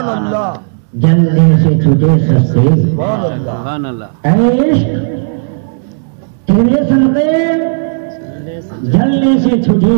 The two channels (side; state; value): left; silent; digital silence